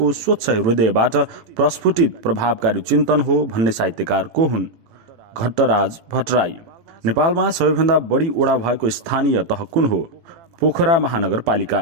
स्वच्छ हृदयबाट प्रस्फुटित प्रभावकारी चिन्तन हो भन्ने साहित्यकार को हुन्? घट्टराज भट्टराई। नेपालमा सबैभन्दा बढी ओडा भएको स्थानीय तह कुन हो? पोखरा महानगरपालिका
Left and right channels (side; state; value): left; late; 18 ms